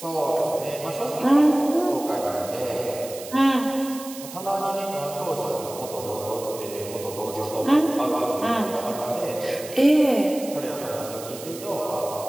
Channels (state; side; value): noise; right; hiss, 13 dB below the sound